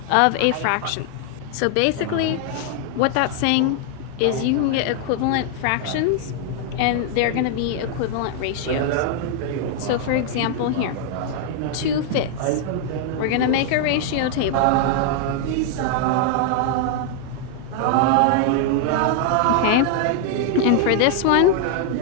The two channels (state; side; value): different; both; correlation 0.00